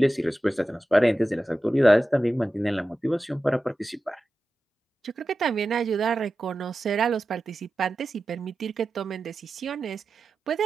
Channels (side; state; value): both; normal; correlation 0.93